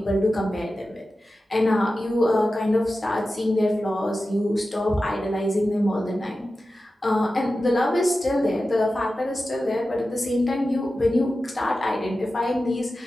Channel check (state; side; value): normal; both; correlation 0.93